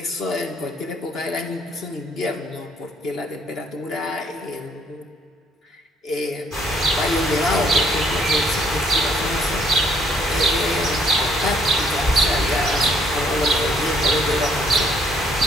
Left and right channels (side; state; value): both; normal; correlation 0.64